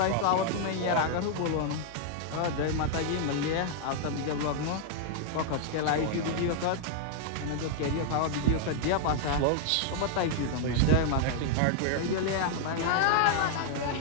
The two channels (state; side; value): different; both; correlation 0.00